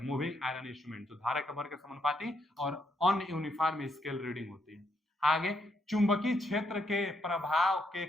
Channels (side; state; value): both; normal; correlation 0.76